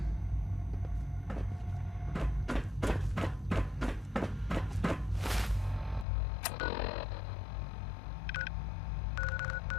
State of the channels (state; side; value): drops out; right; at 6.1 s